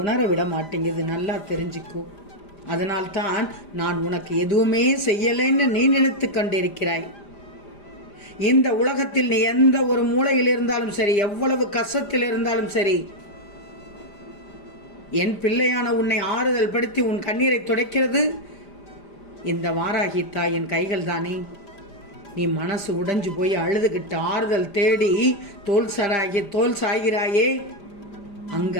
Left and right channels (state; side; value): late; right; 5.0 ms